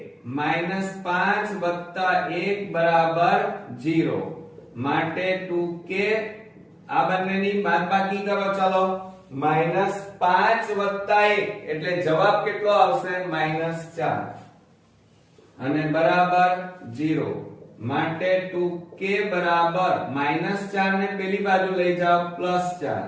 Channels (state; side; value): identical; both; correlation 1.00